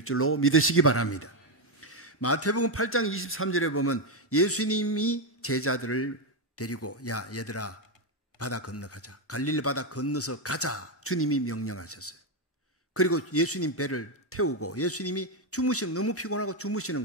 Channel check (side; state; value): both; normal; correlation 0.06